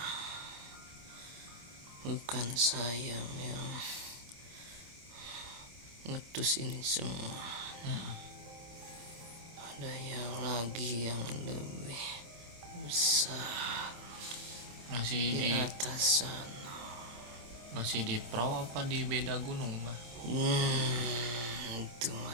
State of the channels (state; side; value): late; left; 26 ms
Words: bukan saya yang ngutus ini semua. Ada yang lagi yang lebih besar Masih di di atas sana. masih di Pro apa di beda gunung, Mbak? Itu